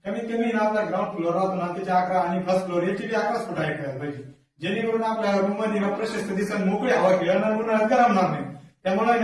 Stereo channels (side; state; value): both; identical; correlation 1.00